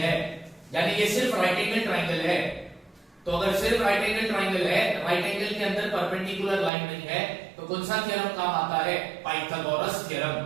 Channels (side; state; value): left; drops out; at 6.7 s